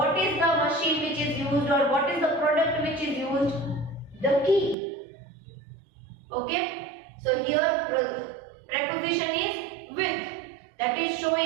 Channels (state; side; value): drops out; left; at 4.8 s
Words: is the machine which is used or what is the product which is used? The key. Okay? So here preposition is with. That is